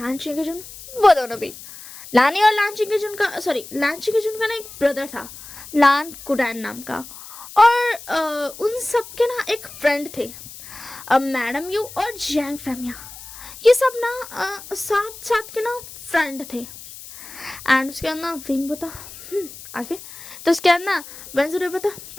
के जुन वो दोनों भी लानी और लांची के जुन का लांची के जुन का ना एक ब्रदर था लान कुडैन नाम का और उन सब के ना एक फ्रेंड थे मैडम यू और जैंग फैमिया, ये सब ना साथ साथ के ना फ्रेंड थे। एंड उसके बाद ना विंग बता आगे। तो उसके बाद ना वेंस जूलियो बता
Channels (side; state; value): left; noise; hiss, 15 dB below the sound